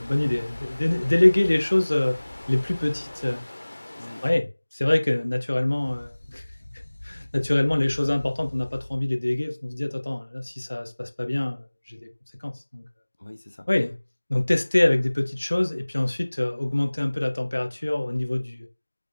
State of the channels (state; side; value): inverted; both; correlation -1.00